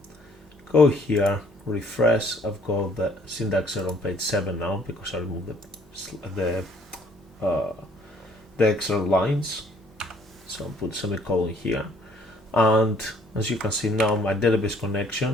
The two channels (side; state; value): both; normal; correlation 0.61